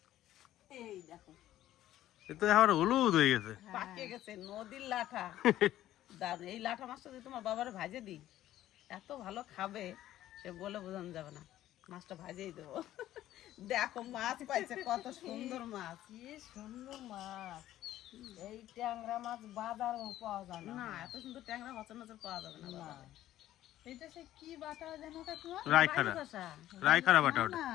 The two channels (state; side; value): quieter; right; 13.4 dB